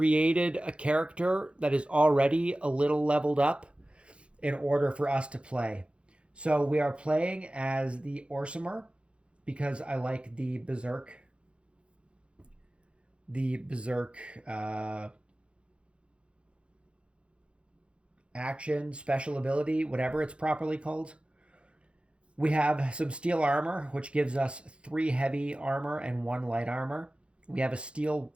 a character that is already a little leveled up in order for us to play. So we are playing as the Orsimer because I like the Berserk action, special ability, whatever it's properly called. We have some steel armor, which gives us 3 heavy armor and 1 light armor. We have a steel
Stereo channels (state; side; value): late; left; 0.058 ms